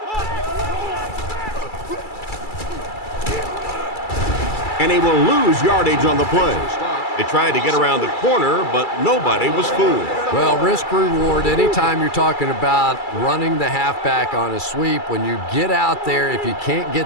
And he will lose yardage on the play. They tried to get around the corner, but nobody was fooled. Well, risk reward, anytime you're talking about running the halfback on a sweep, when you get out there, if you can't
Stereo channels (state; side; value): late; right; 2.3 ms